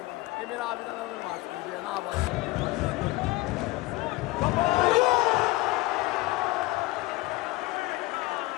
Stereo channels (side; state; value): right; quieter; 20.3 dB